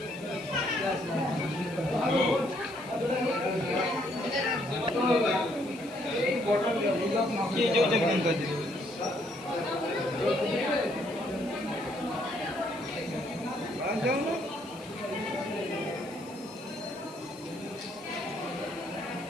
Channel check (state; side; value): noise; left; hiss, 22 dB below the sound